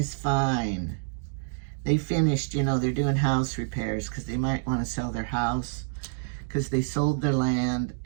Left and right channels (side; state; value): left; silent; digital silence